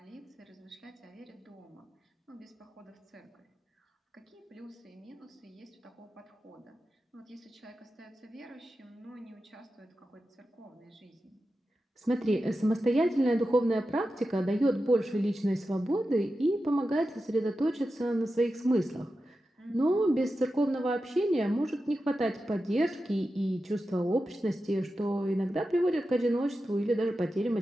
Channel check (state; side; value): normal; both; correlation 0.91